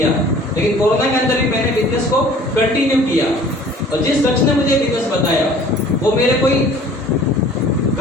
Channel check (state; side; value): normal; both; correlation 0.50